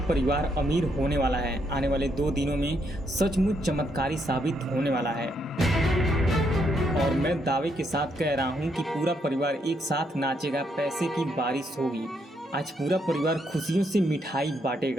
अमीर होने वाला है। आने वाले 2 दिनों में सचमुच चमत्कारी साबित होने वाला है और मैं दावे के साथ कह रहा हूँ कि पूरा परिवार एक साथ नाचेगा, पैसे की बारिश होगी। आज पूरा परिवार खुशियों से मिठाई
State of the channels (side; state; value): both; normal; correlation 0.76